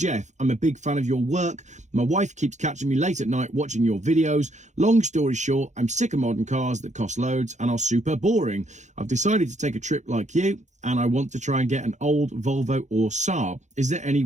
I'm a big fan of your work. My wife keeps catching me late at night watching your videos. Long story short, I'm sick of modern cars that cost loads and are super boring. I've decided to take a trip like you and I want to try and get an old Volvo or Saab. Is there any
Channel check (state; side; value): late; left; 0.34 ms